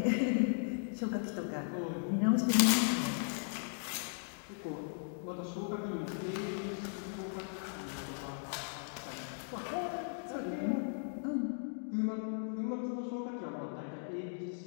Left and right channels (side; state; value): right; silent; digital silence